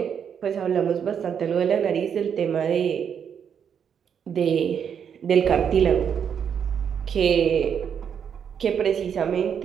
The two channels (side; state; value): left; quieter; 7.8 dB